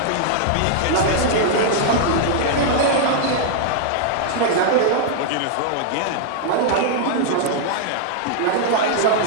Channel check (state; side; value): different; both; correlation -0.01